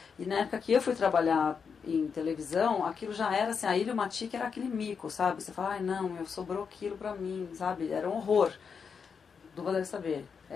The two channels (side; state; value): right; quieter; 6.1 dB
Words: E na época que eu fui trabalhar em televisão, aquilo já era assim, a Ilmatic era aquele mico, sabe? Você fala, não, sobrou aquilo pra mim, sabe? Era um horror. Duva deve saber,